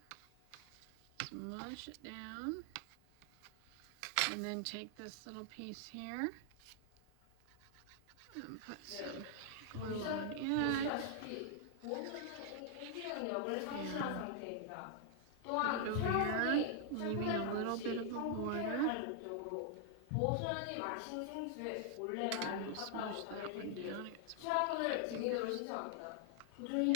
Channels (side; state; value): both; different; correlation 0.00